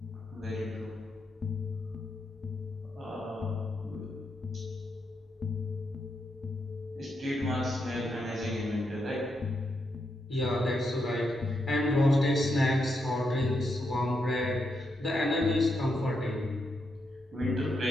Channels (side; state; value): both; normal; correlation 0.82